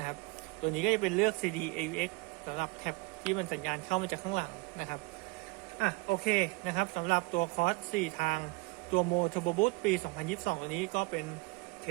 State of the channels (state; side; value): quieter; left; 25.8 dB